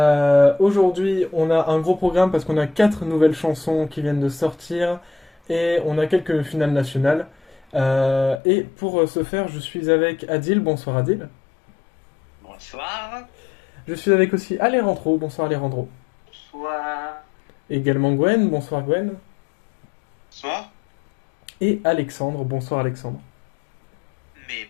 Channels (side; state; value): right; drops out; at 8.3 s